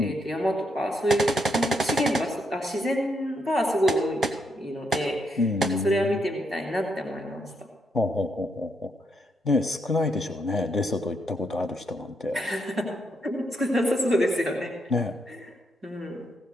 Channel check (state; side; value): normal; both; correlation 0.78